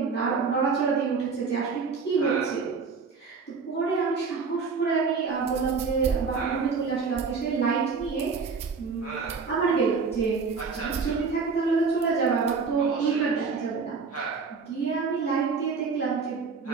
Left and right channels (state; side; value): quieter; left; 5.0 dB